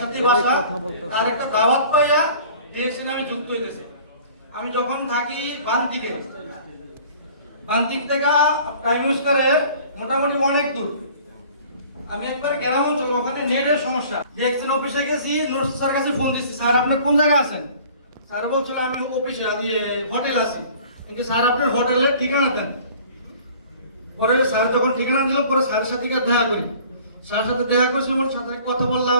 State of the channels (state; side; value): inverted; both; correlation -0.49